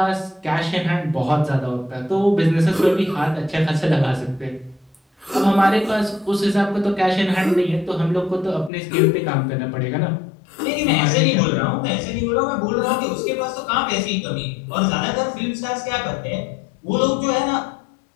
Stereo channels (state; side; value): drops out; right; at 8.7 s